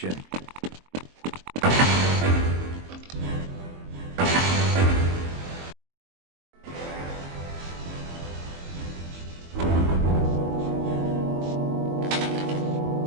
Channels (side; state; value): left; late; 22 ms